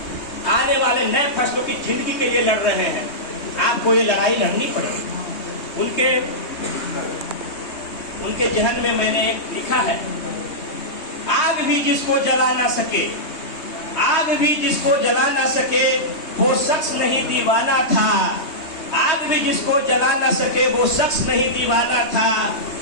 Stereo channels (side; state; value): right; late; 3.2 ms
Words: की जिंदगी के लिए लड़ रहे हैं। आपको ये लड़ाई लड़नी पड़ेगी। उनके जहन में मैंने लिखा है, आग भी जिसको जला ना सके वो शख्स नहीं दीवाना था। आग भी जिसको जला ना सके वो शख्स नहीं दीवाना था।